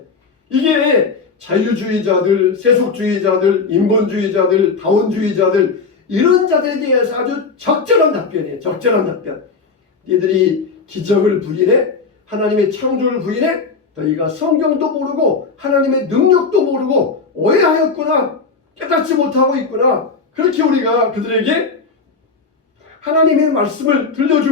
이게 자유주의자들, 세속주의자들, 인본주의자들, 다원주의자들 이런 자들에 대해서 아주 적절한 답변이에요. 적절한 답변. 니들이 기적을 부인해? 하나님의 창조를 부인해? 너희가 성경도 모르고 하나님의 능력도 모르고 오해하였구나. 깨닫지 못하고 있구나. 그렇게 우리가 그들에게 하나님의 말씀을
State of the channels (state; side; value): quieter; right; 4.7 dB